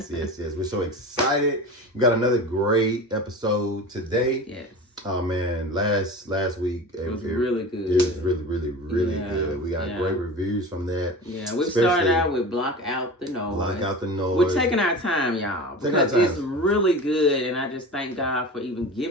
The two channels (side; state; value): both; normal; correlation 0.32